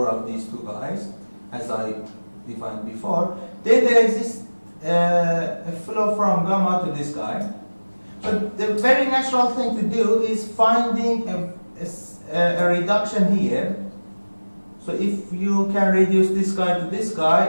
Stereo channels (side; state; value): both; inverted; correlation -1.00